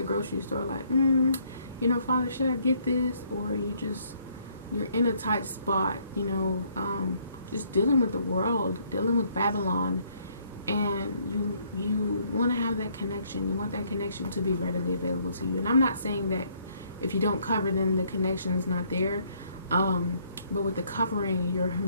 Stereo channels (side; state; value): both; inverted; correlation -0.67